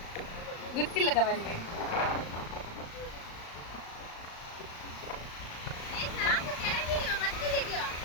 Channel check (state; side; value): late; right; 36 ms